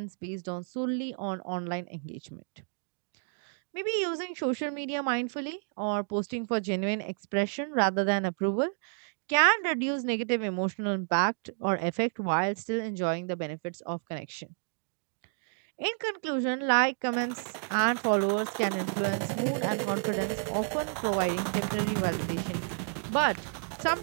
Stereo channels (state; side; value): silent; left; 57 dB below the other